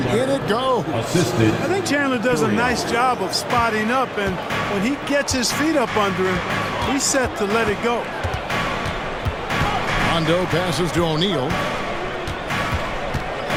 in it goes. Assisted. I think Chandler does a nice job of spotting up, and when he gets his feet up under him, he's set to let it go. Rondo passes to O'Neal.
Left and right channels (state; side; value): identical; both; correlation 1.00